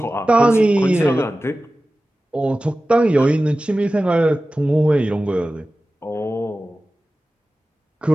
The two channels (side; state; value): both; normal; correlation 0.95